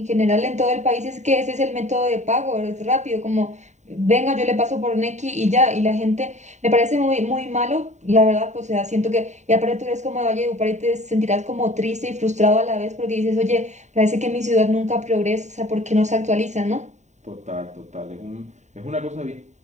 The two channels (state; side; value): late; left; 0.34 ms